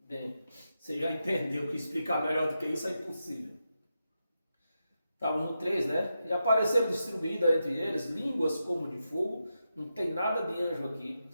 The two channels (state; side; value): inverted; both; correlation -0.87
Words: você já entendeu que explicar melhor do que isso é impossível. Estávamos no 3, né? E apareceram distribuídas entre eles línguas como de fogo, não tem nada de anjo aqui.